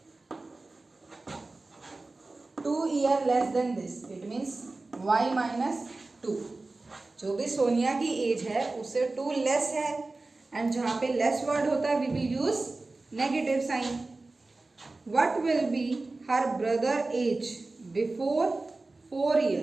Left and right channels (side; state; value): left; quieter; 3.3 dB